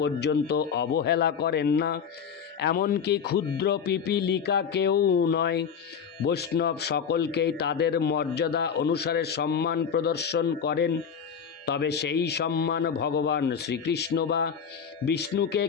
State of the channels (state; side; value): quieter; right; 7.0 dB